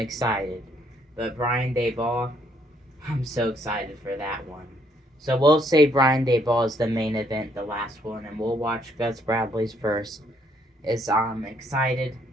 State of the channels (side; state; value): both; normal; correlation 0.69